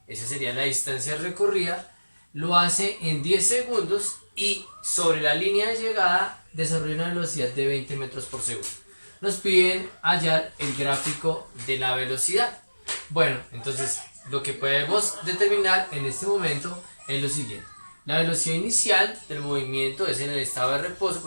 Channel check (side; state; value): both; inverted; correlation -1.00